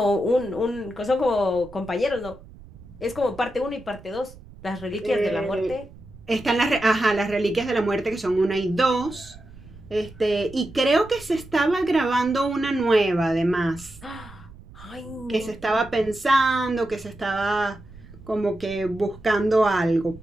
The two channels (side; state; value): right; noise; rumble, 20 dB below the sound